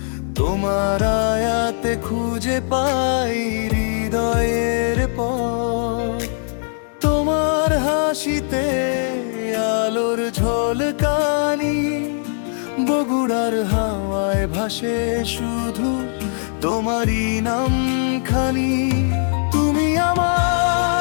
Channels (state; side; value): silent; right; digital silence